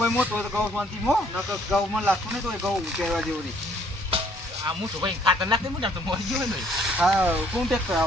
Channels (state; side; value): normal; both; correlation 0.64